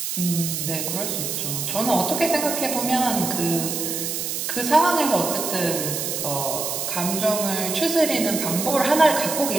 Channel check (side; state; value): right; noise; hiss, 3 dB below the sound